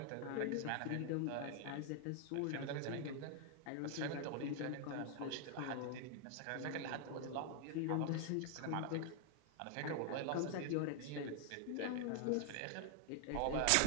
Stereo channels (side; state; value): both; different; correlation 0.00